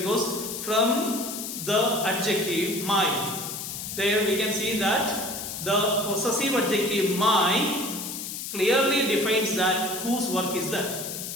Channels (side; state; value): left; noise; hiss, 7 dB below the sound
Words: from the adjective my, there we can see that the possessive adjective my clearly defines that whose work is that.